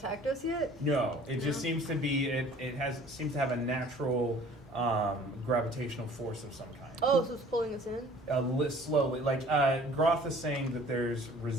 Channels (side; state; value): both; normal; correlation 0.51